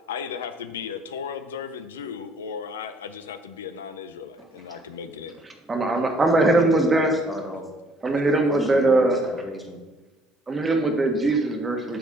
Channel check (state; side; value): normal; both; correlation 0.61